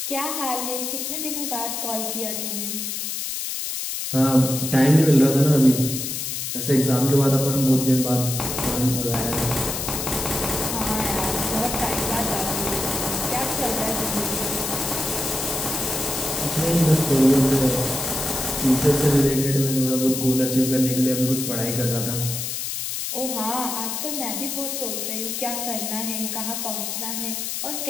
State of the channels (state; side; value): noise; left; hiss, 3 dB below the sound